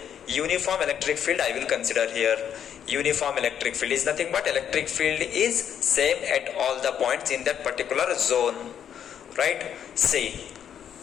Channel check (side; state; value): right; quieter; 9.0 dB